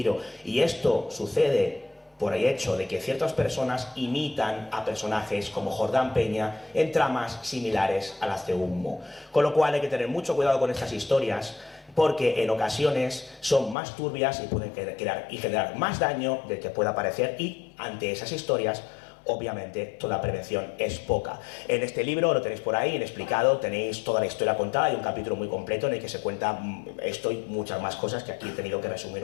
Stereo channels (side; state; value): right; drops out; at 13.8 s